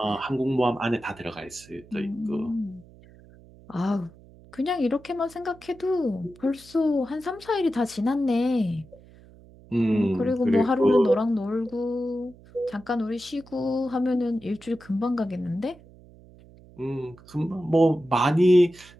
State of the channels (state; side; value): noise; right; hum, 23 dB below the sound